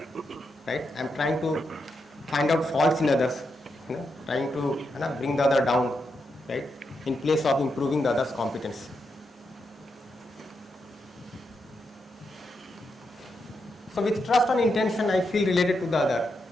Right? I am trying to find out faults in others, trying to bring the other down, right? In place of improving the other's competence. So with trust and intention, I feel related to the other.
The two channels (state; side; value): normal; both; correlation 0.84